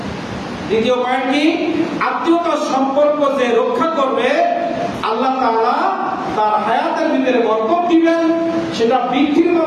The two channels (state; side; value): identical; both; correlation 1.00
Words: দ্বিতীয় পয়েন্ট কি? আত্মীয়তার সম্পর্ক যে রক্ষা করবে, আল্লাহ তাআলা তার হায়াতের ভিতরে বরকত দিবেন। সেটা বৃদ্ধির